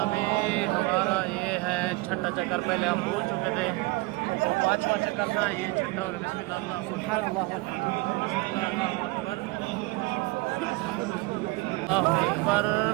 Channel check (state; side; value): quieter; left; 23.0 dB